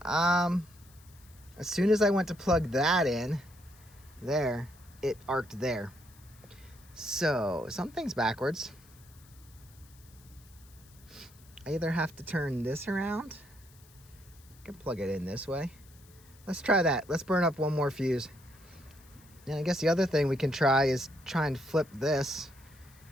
As soon as I went to plug that in, there, it arced there. So, something's backwards. I either have to turn this around. I can plug it in this way. Let's try that. Let's burn up 1 more fuse. And I guess the other thing we can try is try and flip this.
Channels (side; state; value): left; noise; hiss, 26 dB below the sound